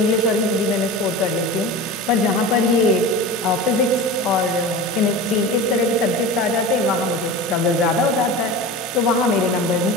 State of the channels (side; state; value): both; normal; correlation 0.31